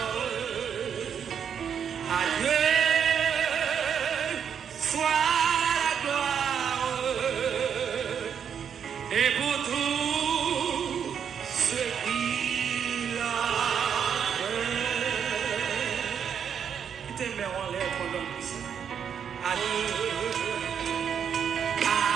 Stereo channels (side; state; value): left; quieter; 7.8 dB